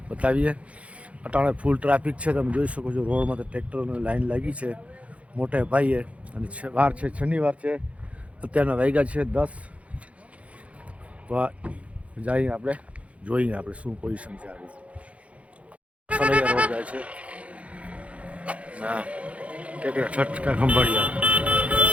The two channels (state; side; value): late; left; 0.064 ms